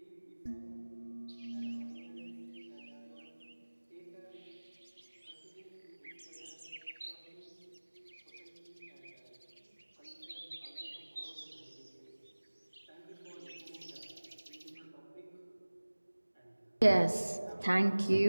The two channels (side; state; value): both; inverted; correlation -1.00